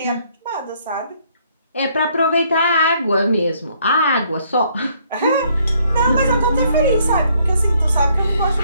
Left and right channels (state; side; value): inverted; both; correlation -0.67